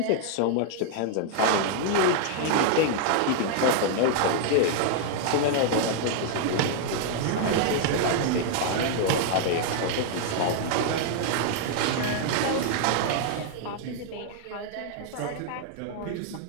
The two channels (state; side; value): different; both; correlation 0.00